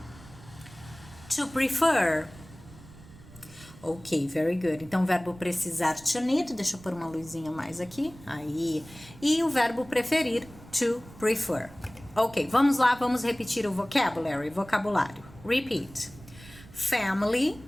to prefer. Ok, very good. Então, o verbo precisar, to need, deixa eu pôr uma luzinha mais aqui, aí. E o verbo preferir, to prefer. Ok, vamos lá, vamos repetir o vocabulário. Repeat. Family,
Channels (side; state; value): right; noise; rumble, 20 dB below the sound